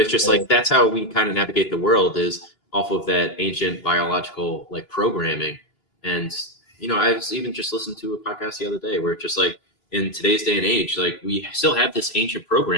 just like, that's how we kind of navigate the world, is off of that ancient biological like programming. And, I was even just listened to a podcast the other day where it's just like, in today's day and age, like we still have this ancient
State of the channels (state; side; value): late; right; 3.0 ms